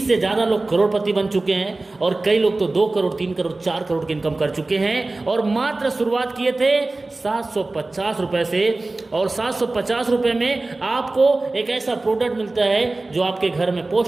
से ज़्यादा लोग करोड़पति बन चुके हैं, और कई लोग तो 2 करोड़, 3 करोड़, 4 करोड़ की इनकम कर चुके हैं। और मात्र शुरुआत किए थे 750 रुपये से, और 750 रुपये में आपको एक ऐसा प्रोडक्ट मिलता है जो आपके घर में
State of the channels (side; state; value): left; quieter; 3.1 dB